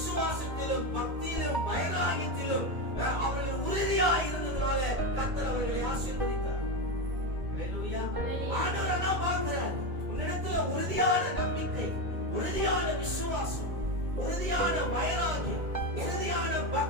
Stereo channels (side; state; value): left; late; 2.3 ms